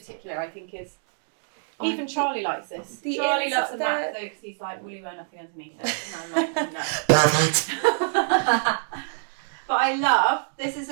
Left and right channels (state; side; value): silent; left; digital silence